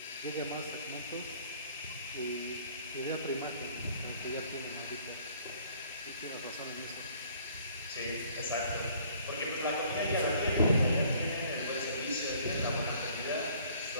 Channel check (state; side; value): inverted; both; correlation -0.58